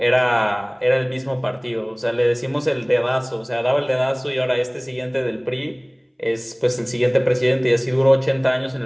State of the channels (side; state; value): both; identical; correlation 1.00